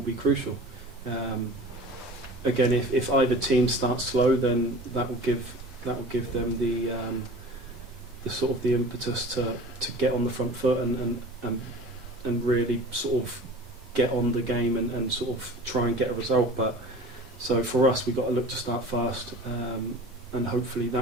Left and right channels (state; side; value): normal; both; correlation 0.40